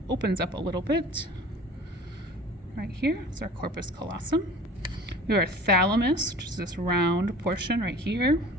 opens up a little bit. Right here is our corpus callosum. We have our thalamus, which is this round portion right here.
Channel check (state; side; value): normal; both; correlation 0.43